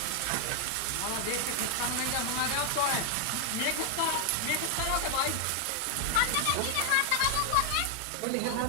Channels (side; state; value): both; different; correlation 0.00